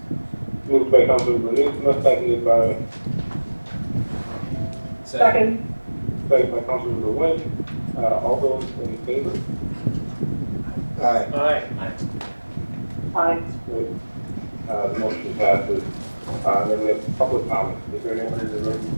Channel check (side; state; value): both; inverted; correlation -1.00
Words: Moved by Councilmember Newsma, seconded by Second. Councilmember Wynn. All those in favor? Aye. Aye. Great. The motion passes. Then we have public comment. Is there anyone in the room